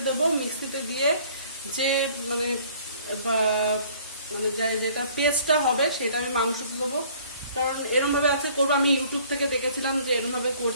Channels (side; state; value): both; inverted; correlation -0.55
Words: দেবো। মিক্সিতে দিয়ে যে মানে যেটা পেস্টটা হবে সেটা আমি মাংসতে দেবো। কারণ এরমভাবে আজকে করবো, আমি ইউটিউব থেকে দেখেছিলাম যে এরমভাবে